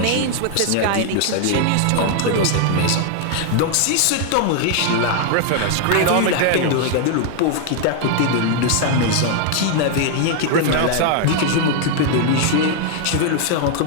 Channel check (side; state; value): both; different; correlation 0.00